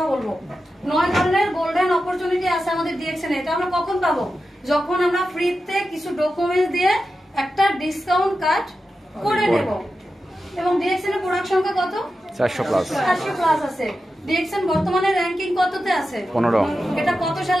বলবো। 9 ধরনের গোল্ডেন অপরচুনিটি আছে আমাদের ডিএক্সএল এ। এটা আমরা কখন পাবো? যখন আমরা ফ্রিতে কিছু ডকুমেন্টস দিয়ে একটা ডিসকাউন্ট কার্ড করে নেব। এবং ডিএক্সএল এর প্রোডাক্ট সংখ্যা কত? 400 প্লাস। 400 প্লাস আছে। ডিএক্সএল বর্তমানে র‍্যাঙ্কিং কততে আছে? 15। এটা কত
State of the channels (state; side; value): normal; both; correlation 0.91